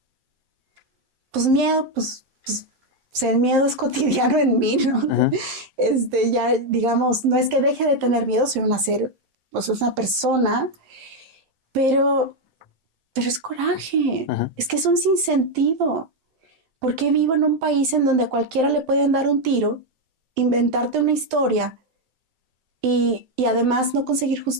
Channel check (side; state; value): left; late; 7.7 ms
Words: Pues miedo, pues el miedo es cotidiano en mí, ¿no? Ya, digamos, no es que deje de tener miedo, soy pues una persona, pero es coraje. Es que es un sinsentido. ¿Por qué vivo en un país en donde a cualquiera le pueden dar un tiro, inventarte una historia y además no conseguir